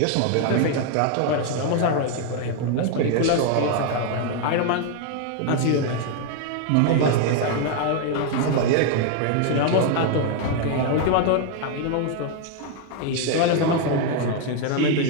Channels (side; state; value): both; different; correlation 0.01